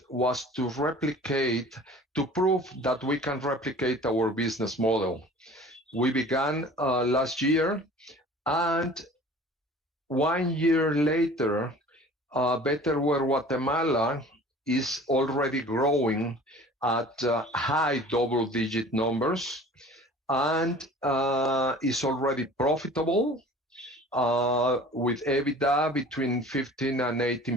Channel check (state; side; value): normal; both; correlation 0.45